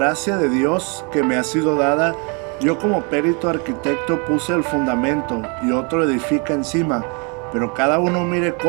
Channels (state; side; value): quieter; left; 34.2 dB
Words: de Dios que me ha sido dada, yo como perito arquitecto puse el fundamento y otro edifica encima, pero cada uno mire